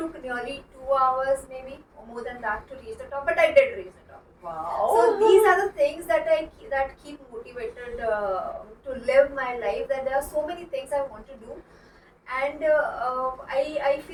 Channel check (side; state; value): both; identical; correlation 1.00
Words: nearly 2 hours maybe, or more than that to reach the top. But I did reach the top. Wow. So these are the things that that keep motivated to live my life. That there are so many things I want to do. And I